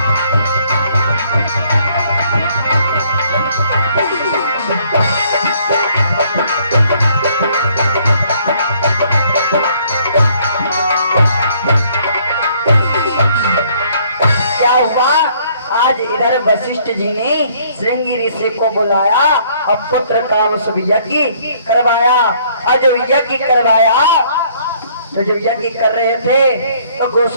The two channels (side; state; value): both; inverted; correlation -0.63